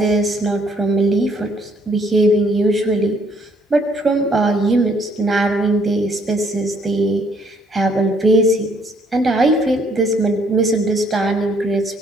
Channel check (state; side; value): normal; both; correlation 0.65